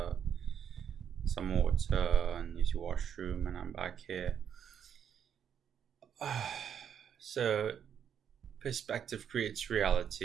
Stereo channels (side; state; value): left; quieter; 8.4 dB